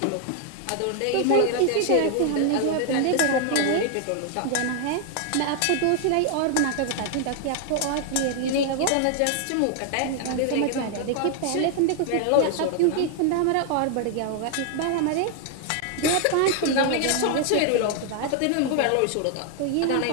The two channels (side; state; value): both; different; correlation 0.00